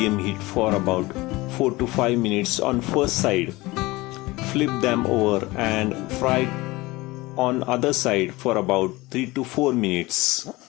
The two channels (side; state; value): right; quieter; 21.0 dB